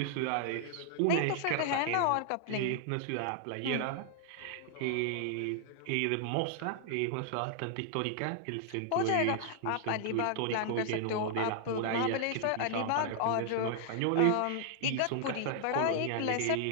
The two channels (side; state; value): both; different; correlation 0.00